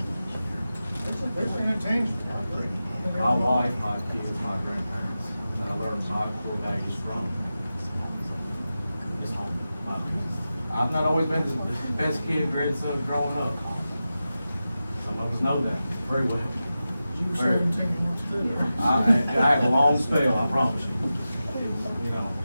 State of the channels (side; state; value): both; inverted; correlation -0.93